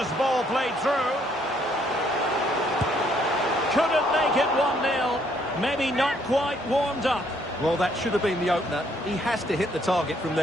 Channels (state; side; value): normal; both; correlation 0.68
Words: ball played through. Couldn't make it 1-0. Maybe not quite warmed up. Well, that should have been the opener. He has to hit the target from